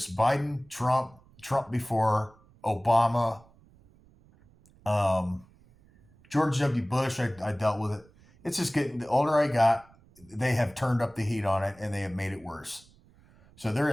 Biden, Trump before, Obama, George W. Bush. I dealt with it. It's just getting, the older I got, they have turned up the heat on it and they have made it worse. So there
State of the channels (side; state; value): right; noise; rumble, 28 dB below the sound